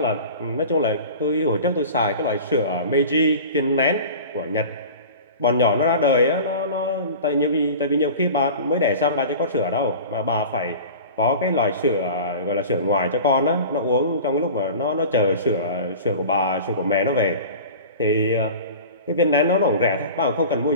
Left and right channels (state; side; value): inverted; both; correlation -0.37